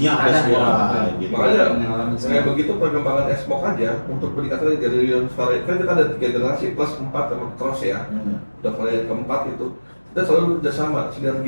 ada semua ya, gitu. Makanya Yang alami kayak begitu perkembangan Xbox aja untuk peningkatan dari yang varian kan kita ada 3 generasi plus 4 sama cross ya. Udah varian keempat itu kita selalu kerjasama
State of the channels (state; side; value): inverted; both; correlation -1.00